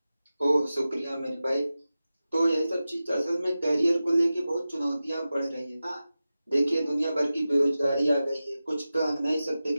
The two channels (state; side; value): inverted; both; correlation -0.94